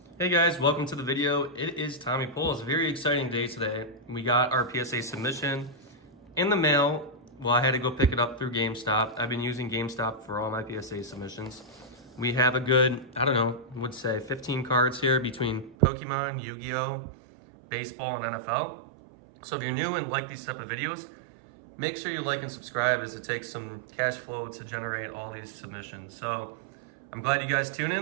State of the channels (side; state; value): left; drops out; at 15.8 s